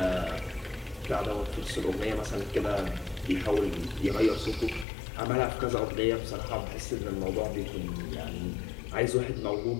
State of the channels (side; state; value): right; drops out; at 4.9 s